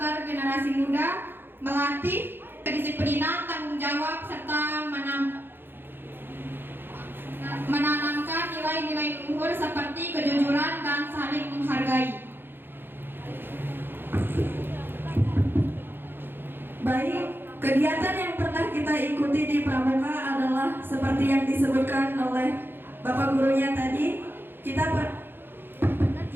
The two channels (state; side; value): late; left; 0.10 ms